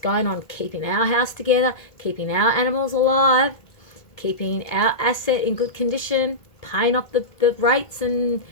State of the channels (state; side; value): late; right; 1.8 ms